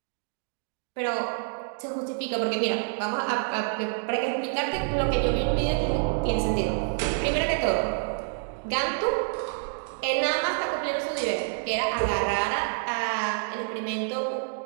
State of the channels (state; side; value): silent; left; digital silence